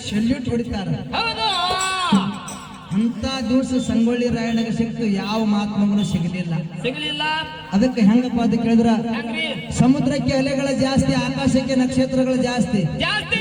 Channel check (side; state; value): both; identical; correlation 1.00